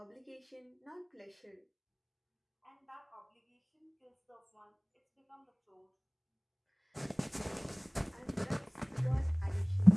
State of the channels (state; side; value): identical; both; correlation 1.00